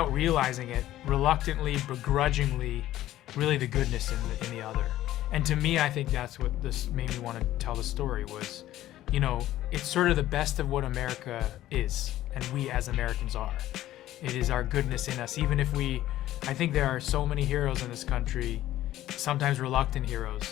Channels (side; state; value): right; quieter; 14.1 dB